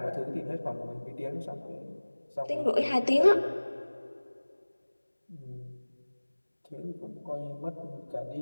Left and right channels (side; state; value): both; inverted; correlation -1.00